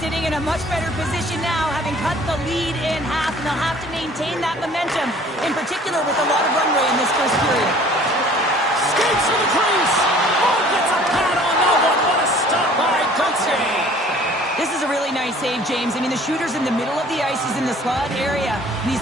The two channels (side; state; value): both; normal; correlation 0.52